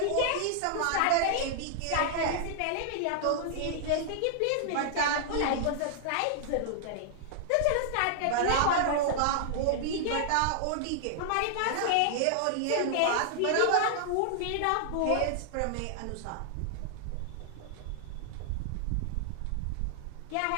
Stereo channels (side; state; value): both; different; correlation -0.01